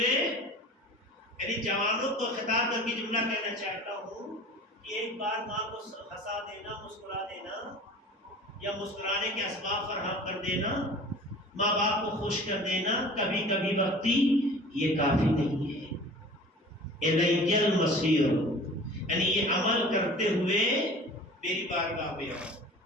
یعنی جوانوں کو خطاب کر کے جملہ کہنا چاہتا ہوں کہ ایک بار ماں کو ہنسا دینا، مسکرا دینا یا مسکرانے کے اسباب فراہم کر دینا، ماں باپ کو خوش کر دینا کبھی کبھی وقتی، یہ کافی نہیں ہے. الی المصیر یعنی یہ عمل کرتے ہوئے میری بارگاہ میں آؤ.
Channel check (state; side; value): normal; both; correlation 0.42